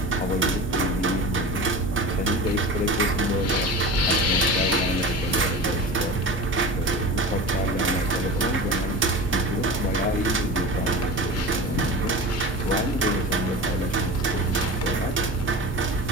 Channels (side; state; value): both; normal; correlation 0.32